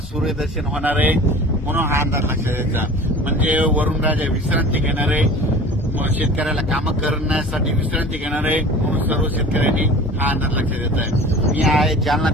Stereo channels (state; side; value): normal; both; correlation 0.40